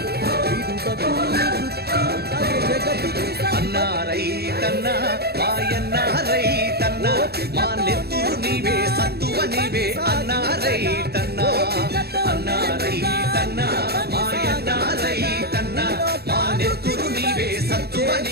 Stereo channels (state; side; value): late; left; 0.46 ms